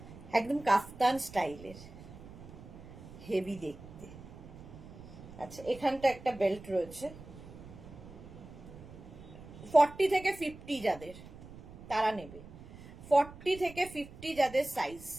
একদম কাফতান স্টাইলের, হেভি দেখতে। আচ্ছা, এখানটা একটা বেল্ট রয়েছে 40 থেকে 50 যাদের, তারা নেবে। 40 থেকে 50 যাদের সাইজ,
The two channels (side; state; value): right; noise; rumble, 16 dB below the sound